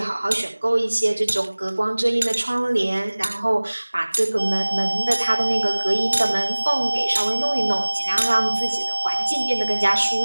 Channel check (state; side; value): inverted; both; correlation -1.00